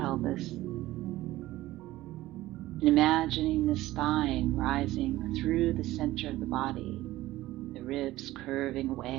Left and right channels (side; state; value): left; quieter; 16.5 dB